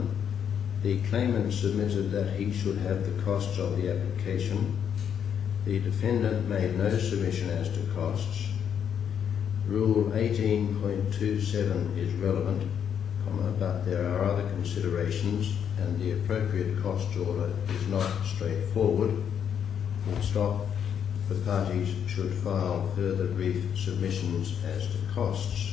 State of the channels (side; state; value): right; quieter; 8.3 dB